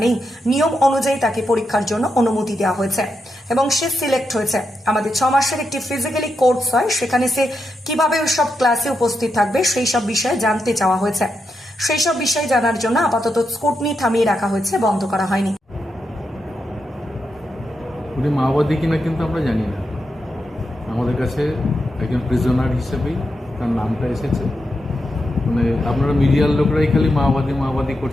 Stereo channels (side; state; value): both; normal; correlation 0.85